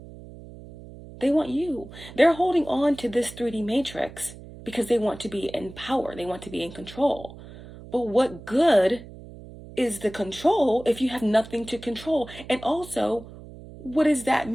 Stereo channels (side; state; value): right; noise; hum, 16 dB below the sound